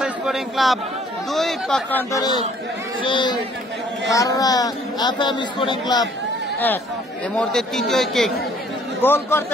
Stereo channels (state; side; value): normal; both; correlation 0.59